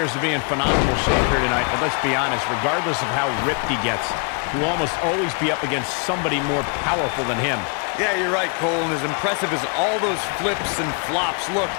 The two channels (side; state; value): right; quieter; 37.1 dB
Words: to be in phenomenal shape here tonight, but let's be honest, regardless of how ripped he gets, he will almost always be up against somebody more powerful than him. Yeah, you're right, Cole, and as impressive as all those flips and flops look,